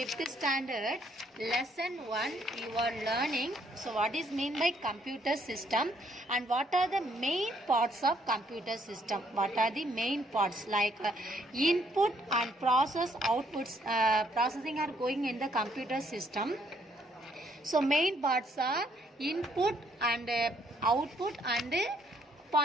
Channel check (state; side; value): normal; both; correlation 0.69